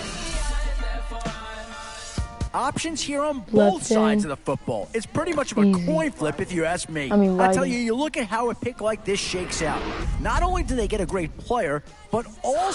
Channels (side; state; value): both; identical; correlation 1.00